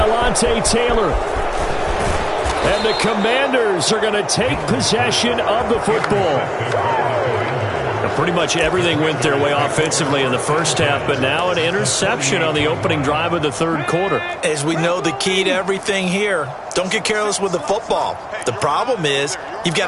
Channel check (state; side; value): identical; both; correlation 1.00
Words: Taylor. And the Commanders are going to take possession of the football. Pretty much everything went their way offensively in the first half, but now an interception on the opening drive of the third quarter. As we know, the key to everything here, don't get careless with the football. The problem is you've